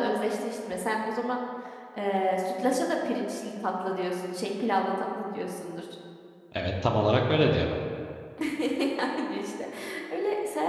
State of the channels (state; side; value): identical; both; correlation 1.00